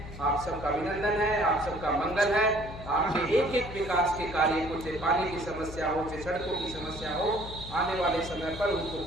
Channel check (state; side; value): noise; left; hum, 12 dB below the sound